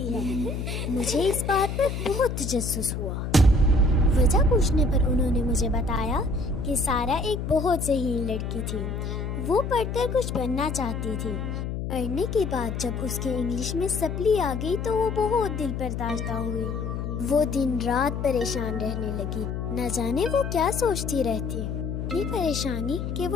ہے. مجھے اس بات پر بہت تجسس ہوا. وجہ پوچھنے پر انہوں نے مجھے بتایا کہ سارا ایک بہت ذہین لڑکی تھی. وہ پڑھ کر کچھ بننا چاہتی تھی. پڑھنے کے بعد جب اس کے انگلش میں سپلی آ گئی تو وہ بہت دل پرداشتہ ہوئی. وہ دن رات پریشان رہنے لگی. نہ جانے وہ کیا سوچتی رہتی. اتنی پریشانی کہ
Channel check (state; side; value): noise; left; hum, 4 dB below the sound